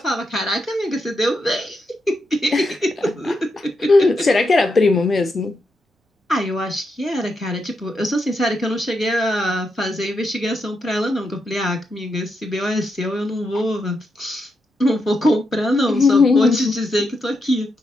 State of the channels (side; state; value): both; normal; correlation 0.83